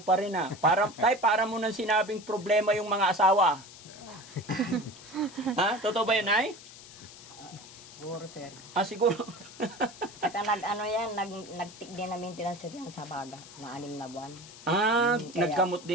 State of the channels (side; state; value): left; noise; hiss, 18 dB below the sound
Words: rin Tay, para mo nang sinabing problema yung mga asawa. Ha? Totoo ba yun, Nay? Puro, Sir. Siguro. Saka nagtik din na maintenance yan sa baga, na 6 na buwan. Nagkamot